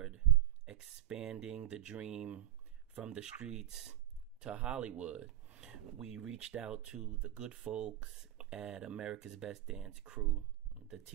expanding the dream from the streets to Hollywood. We reached out to the good folks at America's Best Dance Crew, the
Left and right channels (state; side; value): quieter; left; 13.9 dB